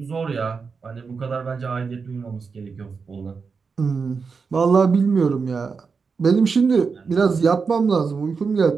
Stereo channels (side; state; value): left; quieter; 5.2 dB